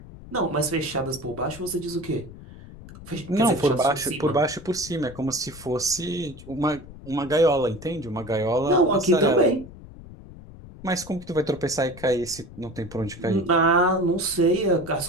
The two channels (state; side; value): noise; left; rumble, 17 dB below the sound